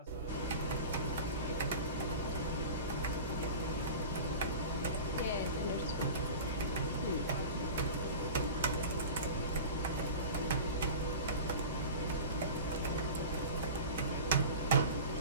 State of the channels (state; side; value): inverted; both; correlation -0.34